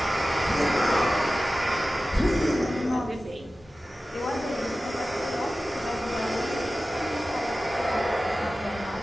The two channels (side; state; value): both; normal; correlation 0.95